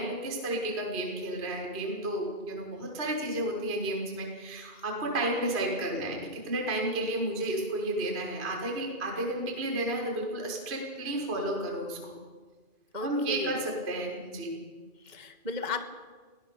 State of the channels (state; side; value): late; left; 2.5 ms